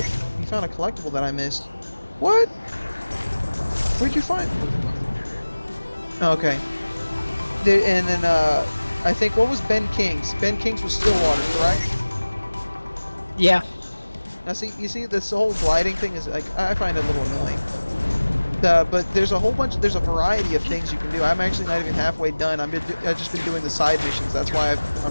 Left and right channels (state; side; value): inverted; both; correlation -1.00